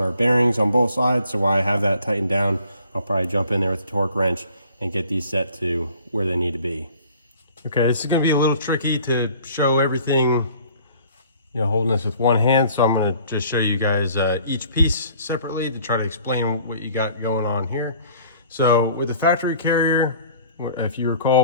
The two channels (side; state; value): both; inverted; correlation -0.52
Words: bearings on both sides. So while I have that tightened down, I'll probably jump in there with the torque wrench and get these set to where they need to be. Okay, this is going to be a little tricky to show everything, you know, holding this with one hand. So I'm going to just show you guys each piece separately to try to explain what you got going on here. So with the factory carrier, if you